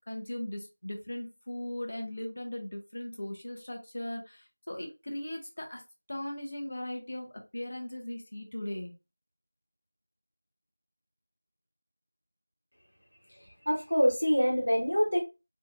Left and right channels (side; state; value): both; inverted; correlation -0.99